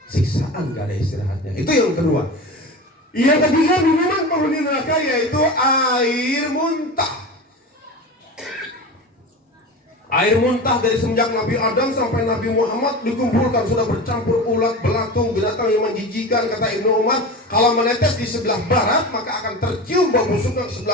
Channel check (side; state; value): both; normal; correlation 0.29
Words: Siksaan enggak ada istirahatnya. Itu yang kedua. Yang ketiga, minuman penghuni neraka yaitu air muntah. Air muntah dari semenjak Nabi Adam sampai Nabi Muhammad dikumpulkan, sudah bercampur ulat, belatung, binatang yang menjijikan. Kata Ibnu Umar, kalau menetes di sebelah barat maka akan tercium bau busuknya ke